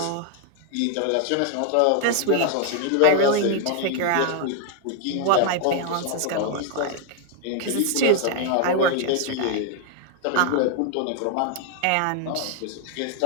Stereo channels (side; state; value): both; different; correlation 0.00